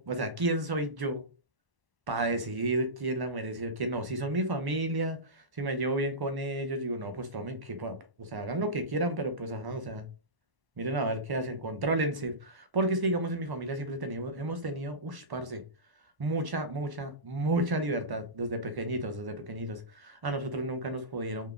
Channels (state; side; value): late; left; 1.1 ms